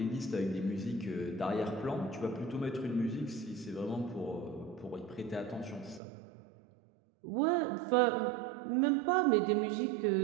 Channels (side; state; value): left; drops out; at 6.0 s